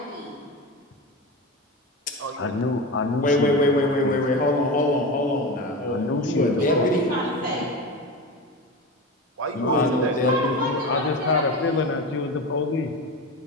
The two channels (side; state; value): both; normal; correlation 0.24